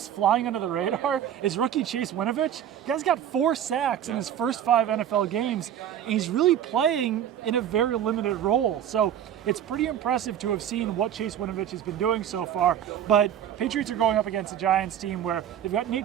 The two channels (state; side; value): quieter; left; 10.0 dB